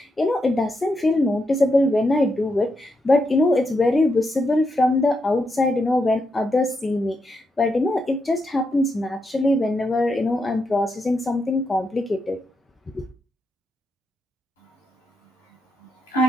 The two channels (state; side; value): normal; both; correlation 0.83